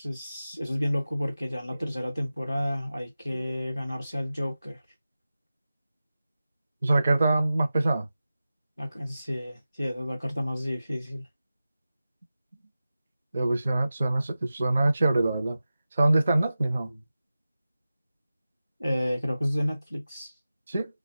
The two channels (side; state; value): both; inverted; correlation -0.94